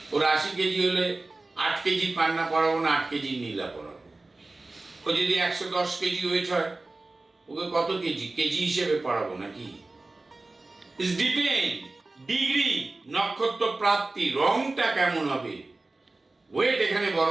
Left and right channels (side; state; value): left; quieter; 3.2 dB